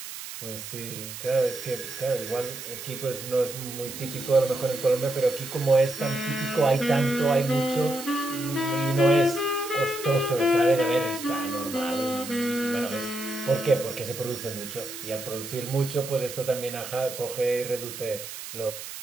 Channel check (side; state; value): right; noise; hiss, 10 dB below the sound